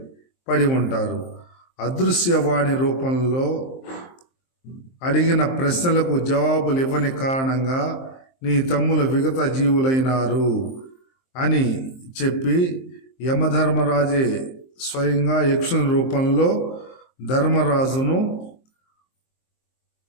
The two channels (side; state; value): right; late; 23 ms